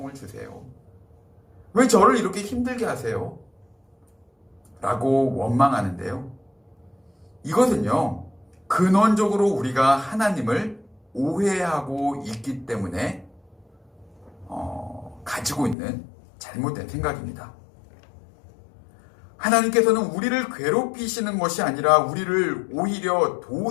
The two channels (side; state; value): right; drops out; at 15.8 s